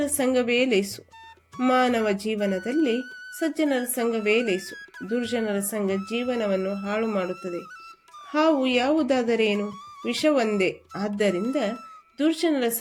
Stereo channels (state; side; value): identical; both; correlation 1.00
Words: ಸಂಘವೇ ಲೇಸು. ಮಾನವ ಜೀವನದಲ್ಲಿ ಸಜ್ಜನರ ಸಂಘವೇ ಲೇಸು. ದುರ್ಜನರ ಸಂಘ ಜೀವನವನ್ನು ಹಾಳು ಮಾಡುತ್ತದೆ. ಹಾವು ಯಾವುದಾದರೇನು? ವಿಷವೊಂದೇ. ಆದ್ದರಿಂದ ದುರ್ಜನರ